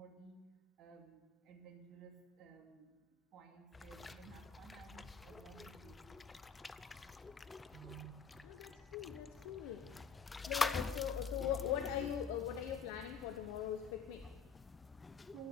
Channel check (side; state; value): right; quieter; 6.0 dB